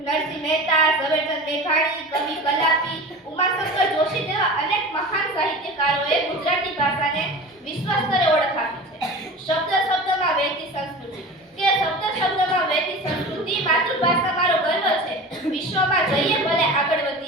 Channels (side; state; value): both; normal; correlation 0.34